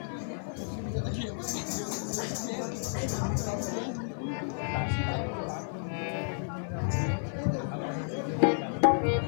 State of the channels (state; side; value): silent; right; 57 dB below the other